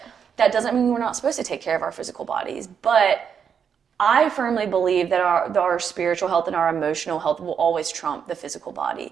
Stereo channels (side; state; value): left; quieter; 7.3 dB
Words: that doesn't mean we're not supposed to take care of our physical bodies. But I firmly believe that our spiritual health and our emotional health will always trump the physical